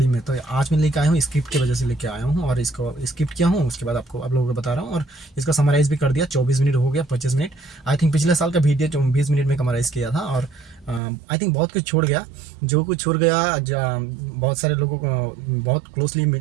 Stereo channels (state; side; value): drops out; left; at 11.0 s